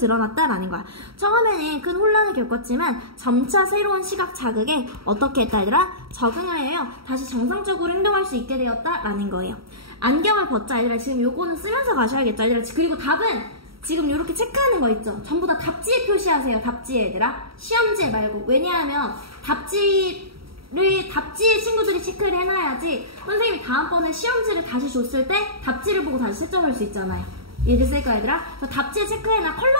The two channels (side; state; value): left; late; 0.75 ms